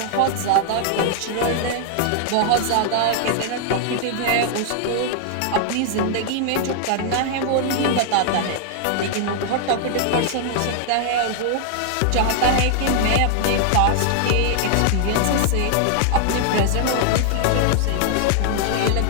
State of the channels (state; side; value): different; both; correlation 0.00